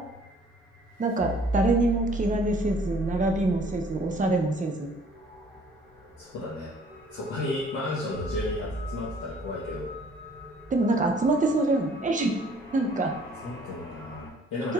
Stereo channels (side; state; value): both; normal; correlation 0.57